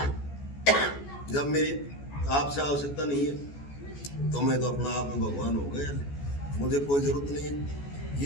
जब मेरी आपसे आवश्यकता नहीं है तो मैं तो अपना आप में भगवान हो गया, मुझे कोई जरूरत नहीं है।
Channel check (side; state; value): right; late; 14 ms